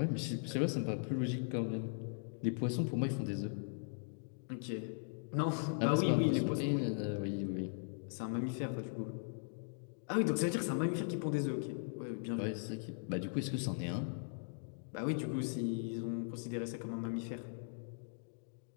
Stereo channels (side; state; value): right; silent; digital silence